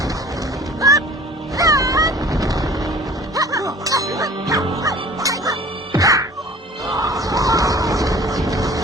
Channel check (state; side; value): normal; both; correlation 0.46